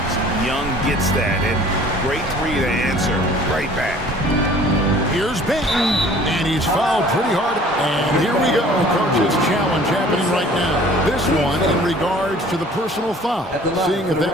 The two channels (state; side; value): normal; both; correlation 0.51